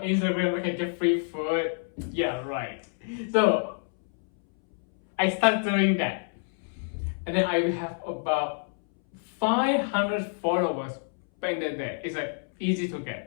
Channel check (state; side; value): silent; right; 60 dB below the other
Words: Instagram, I can get free food. Yeah, right. So I started doing that. And then I have about 500 followers back in the day. It's easy to